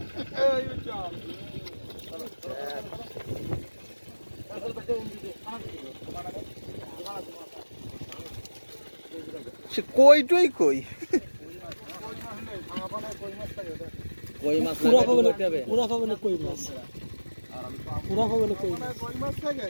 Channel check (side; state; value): both; inverted; correlation -1.00